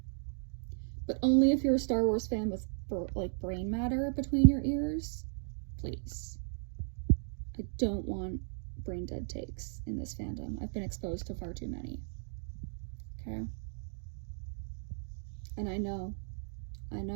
But only if you're a Star Wars fan with, like, brain matter between your ears. Please. I don't want brain dead takes in this fandom. I've been exposed to far too many. Okay? And I know,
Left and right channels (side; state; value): left; silent; digital silence